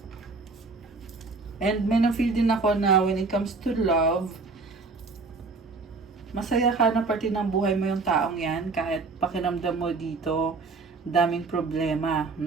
And may na-feel din ako na when it comes to love, masaya ka na parte ng buhay mo yung taong yan, kahit pakiramdam mo dito, daming problema,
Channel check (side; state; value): left; quieter; 4.0 dB